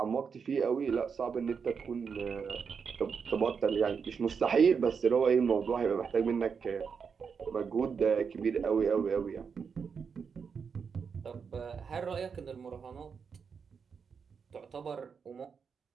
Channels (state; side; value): quieter; left; 6.1 dB